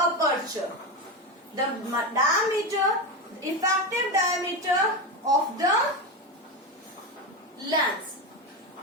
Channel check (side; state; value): both; normal; correlation 0.16